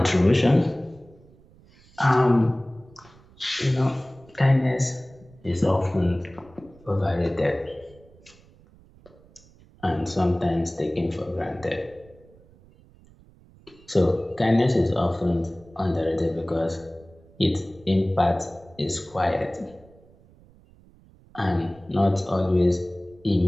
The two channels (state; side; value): noise; right; rumble, 26 dB below the sound